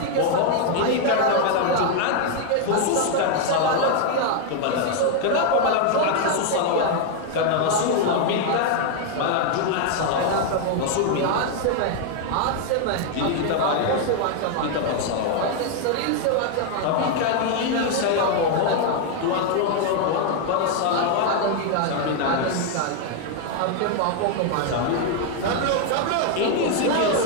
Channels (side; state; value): both; different; correlation 0.00